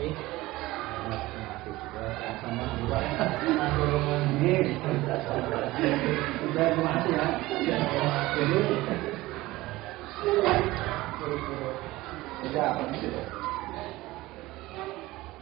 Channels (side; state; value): left; quieter; 18.7 dB